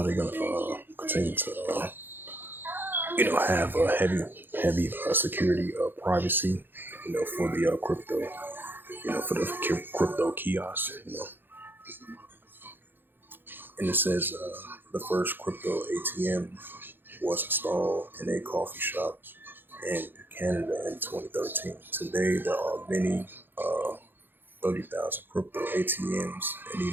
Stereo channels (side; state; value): left; late; 0.098 ms